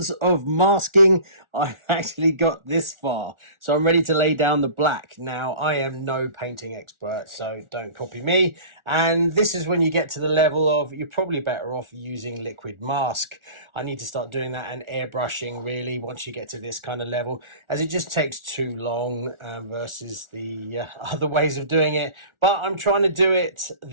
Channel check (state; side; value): late; left; 1.4 ms